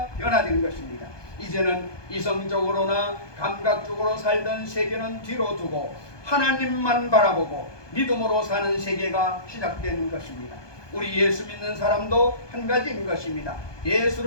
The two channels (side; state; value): right; late; 1.2 ms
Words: 변화된 것입니다. 이제는 이성적으로나 감각적으로 살던 세계는 뒤로 두고 하나님만 바라보고 믿음으로 사는 세계가 시작된 것입니다. 우리 예수 믿는 사람도 한 가지인 것입니다.